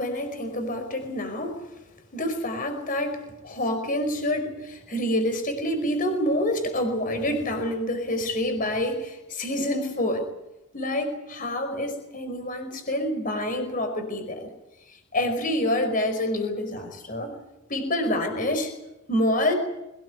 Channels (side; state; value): both; normal; correlation 0.14